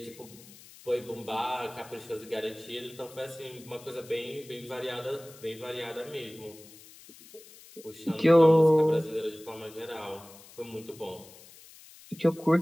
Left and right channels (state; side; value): noise; left; hiss, 21 dB below the sound